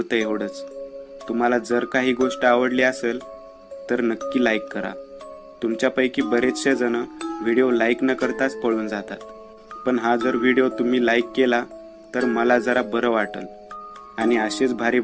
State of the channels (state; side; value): identical; both; correlation 1.00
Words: एवढंच. तुम्हाला जर काही गोष्ट आवडली असेल तर नक्की लाईक करा. तुमच्यापैकी बरेचसे जण व्हिडिओ लाईक न करताच पळून जातात. पण हा जर व्हिडिओ तुम्ही लाईक केला तर मला जरा बरं वाटेल आणि असेच भारी